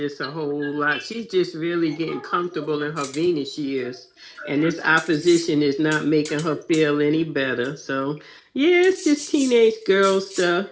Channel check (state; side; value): identical; both; correlation 1.00